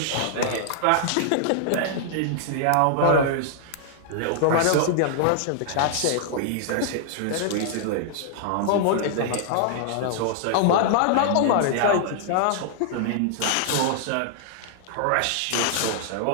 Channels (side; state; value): both; different; correlation -0.01